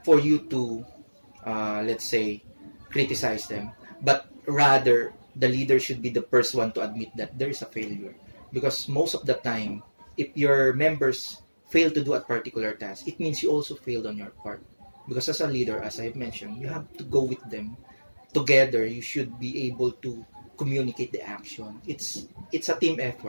for you to let's say criticize them, but rather the leader should be the first one to admit that there is a failure. Because most of the time, if your members fail to do a particular task, it means you also failed on your part. Because as a leader, as I've mentioned, you have to go with them together. You should be able to communicate the action. It's a team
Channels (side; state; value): both; inverted; correlation -1.00